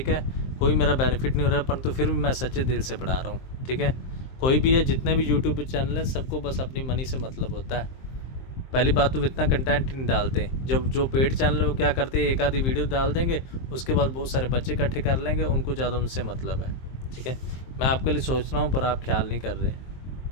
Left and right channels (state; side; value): late; right; 23 ms